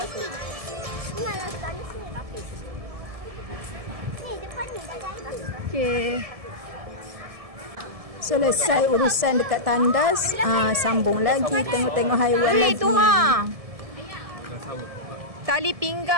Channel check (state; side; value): late; left; 1.7 ms